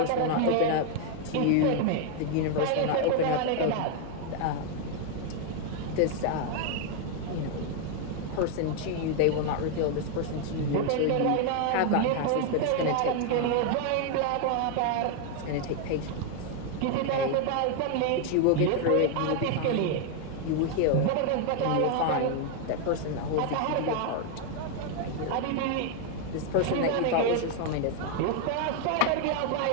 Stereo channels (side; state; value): both; different; correlation 0.00